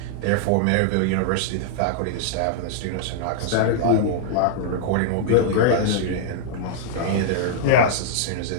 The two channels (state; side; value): different; both; correlation -0.02